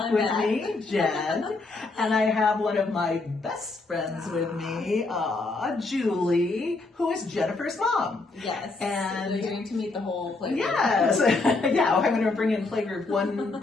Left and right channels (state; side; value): quieter; right; 3.5 dB